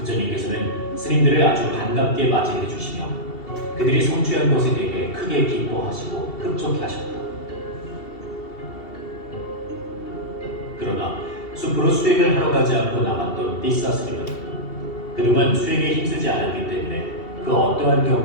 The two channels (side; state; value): right; late; 2.7 ms